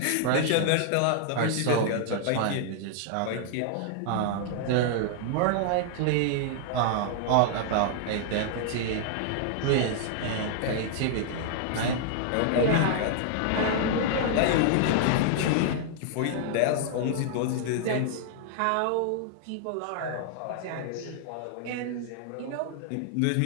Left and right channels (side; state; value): both; different; correlation -0.01